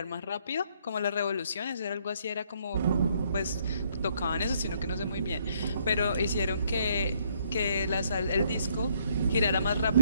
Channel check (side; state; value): both; inverted; correlation -0.69